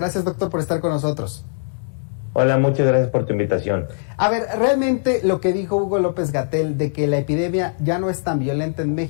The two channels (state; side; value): silent; right; digital silence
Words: doctor, por estar con nosotros. Hola, muchas gracias por tu invitación. A ver, realmente lo que dijo Hugo López-Gatell de que la epidemia ya no es tan violenta en